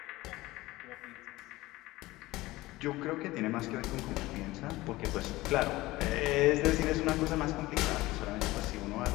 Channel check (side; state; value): right; quieter; 18.8 dB